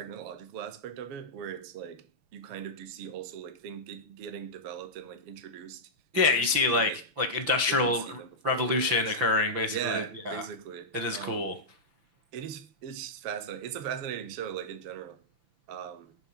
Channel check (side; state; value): left; late; 6.0 ms